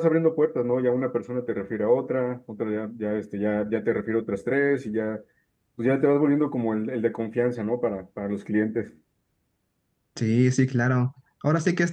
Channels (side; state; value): both; identical; correlation 1.00